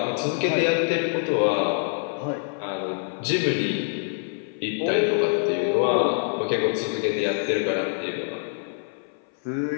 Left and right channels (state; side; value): silent; right; 58 dB below the other